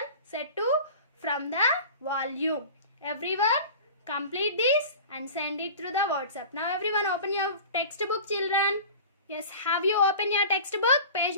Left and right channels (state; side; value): inverted; both; correlation -0.38